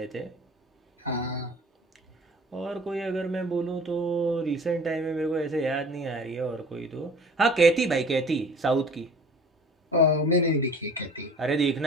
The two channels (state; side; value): normal; both; correlation 0.45